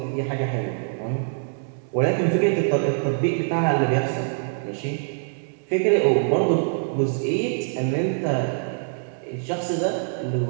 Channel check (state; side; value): silent; left; 61 dB below the other